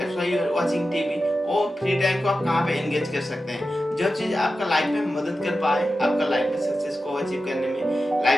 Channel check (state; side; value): normal; both; correlation 0.92